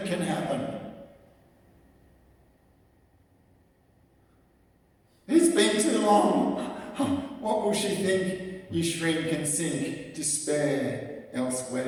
can happen? It's been too long. What will she think? You shrink and sink. Despair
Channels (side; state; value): both; identical; correlation 1.00